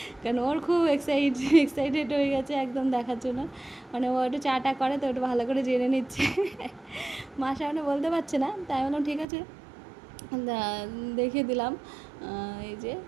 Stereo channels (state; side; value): drops out; left; at 9.2 s